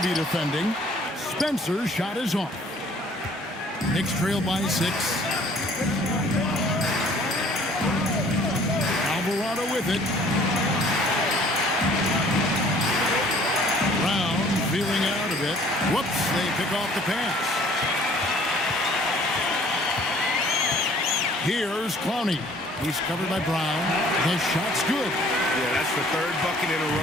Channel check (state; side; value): normal; both; correlation 0.55